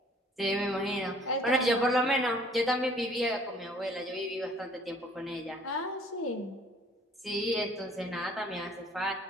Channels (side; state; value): both; normal; correlation 0.56